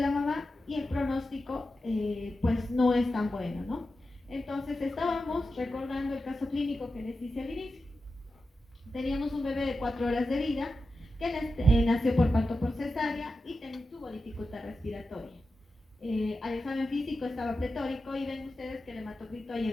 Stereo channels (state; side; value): normal; both; correlation 0.91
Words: mamá, y el pronóstico pues no es tan bueno, ¿no? Entonces estábamos recordando el caso clínico que les hice al inicio. Teníamos un bebé de 4 horas de vida que nació por parto por cesárea y tuvo dificultad respiratoria. Al examen físico estaba pletórico y ven ustedes que el hematocrito ha